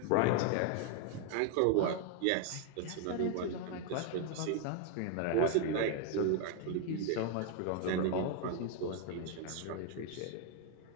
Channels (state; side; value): different; both; correlation 0.00